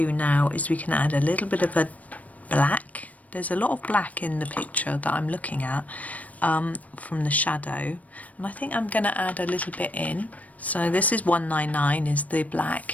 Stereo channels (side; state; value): right; late; 0.071 ms